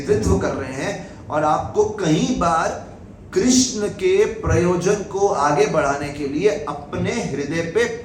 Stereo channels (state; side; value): identical; both; correlation 1.00